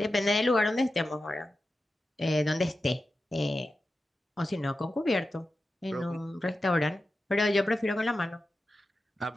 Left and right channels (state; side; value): normal; both; correlation 0.92